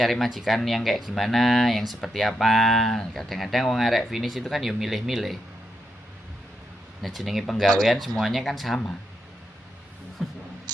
majikan yang kayak gimana, yang seperti apa. Kadang-kadang wong arek finish itu kan ya milih-milih. Nah, jenenge penggawean semuanya kan sama.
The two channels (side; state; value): both; normal; correlation 0.83